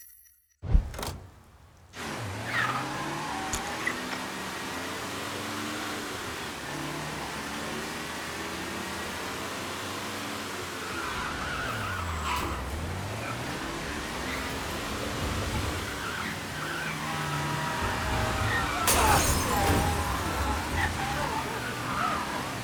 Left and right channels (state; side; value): identical; both; correlation 1.00